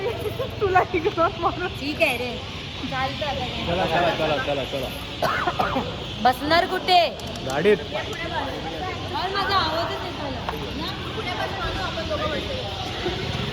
तुला ठीक आहे रे. चालतं आता. चला बसणार कुठे? गाडीत. माझा आवाजच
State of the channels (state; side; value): identical; both; correlation 1.00